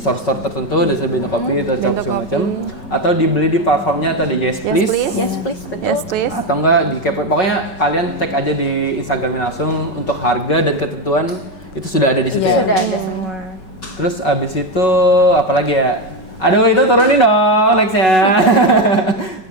tertentu, dari Bento Kopi, atau segala macam, atau dibeli di platformnya atau di Yes Please. yes please betul. Yes, please. Atau enggak di kepoin. Pokoknya kalian cek aja di Instagramnya langsung untuk harga dan ketentuan itu sudah ada di situ ya. Sudah ada semua. Terus abis itu apa lagi ya? Aduh itu turunin dong nextnya.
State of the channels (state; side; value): late; right; 5.4 ms